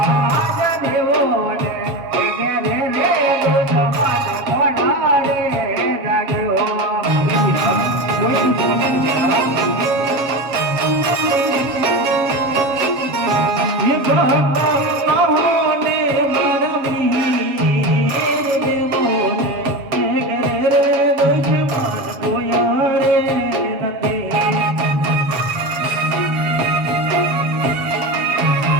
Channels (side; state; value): left; late; 7.2 ms